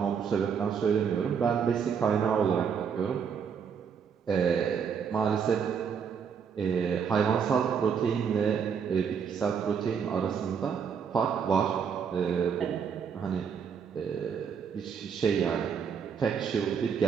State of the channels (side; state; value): left; quieter; 6.9 dB